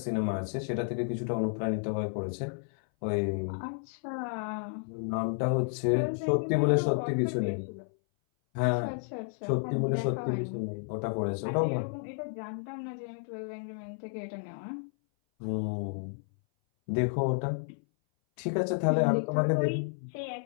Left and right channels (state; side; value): silent; right; 57 dB below the other